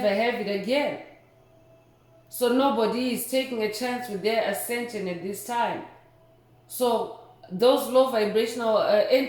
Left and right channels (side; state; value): both; identical; correlation 1.00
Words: have it again. So nobody is taking a chance with their ascension at this time. So those low vibrational